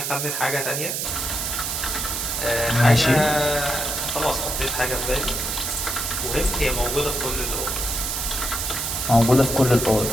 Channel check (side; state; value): right; noise; hiss, 2 dB below the sound